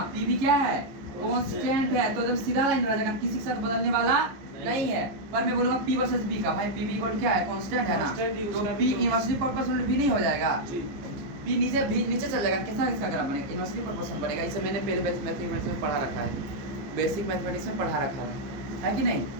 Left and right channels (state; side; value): late; left; 15 ms